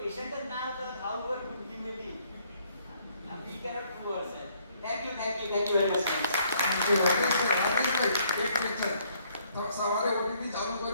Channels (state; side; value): inverted; both; correlation -0.67